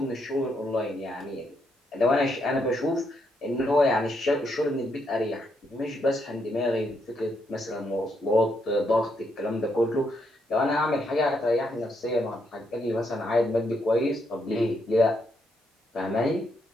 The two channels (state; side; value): normal; both; correlation 0.77